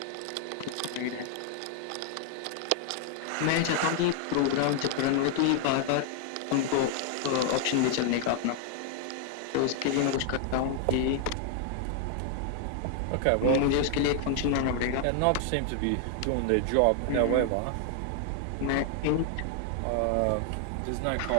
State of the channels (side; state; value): both; different; correlation 0.00